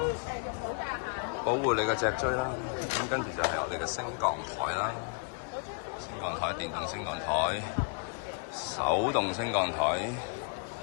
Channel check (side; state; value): right; quieter; 38.6 dB